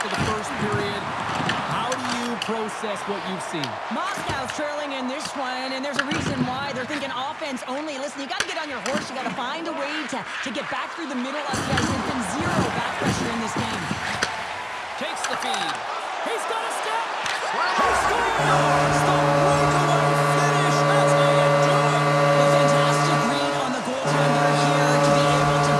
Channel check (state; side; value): identical; both; correlation 1.00